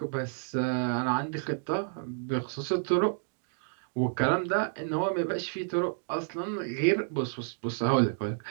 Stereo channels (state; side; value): silent; left; digital silence